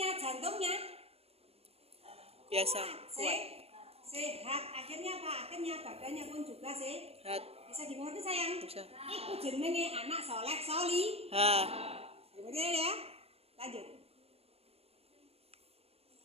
jantungnya Biasa. Kuat. Sehat. Akhirnya apa? Akhirnya badannya pun juga sehat. Bisa dimengerti sayang? Bisa. Iku jenenge anak soleh soli. Betul ya? Lanjut.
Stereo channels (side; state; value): left; late; 0.29 ms